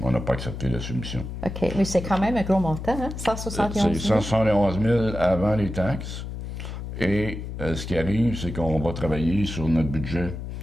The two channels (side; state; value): left; noise; hum, 7 dB below the sound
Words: on n'a pas accepté la soumission. OK. Mais c'est quand même un gros montant, hein? 171 000. C'est 171 000 avant les taxes. Et ce qui arrive, c'est qu'on va travailler sur notre budget.